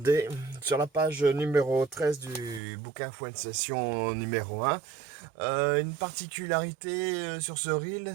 sur la page numéro 13 du bouquin Fouette Session numéro 1. Une particularité sur ce reel,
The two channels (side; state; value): left; drops out; at 2.6 s